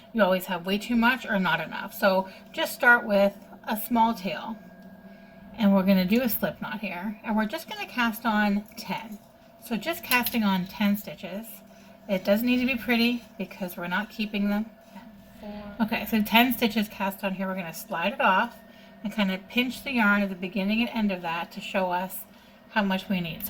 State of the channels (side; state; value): both; identical; correlation 1.00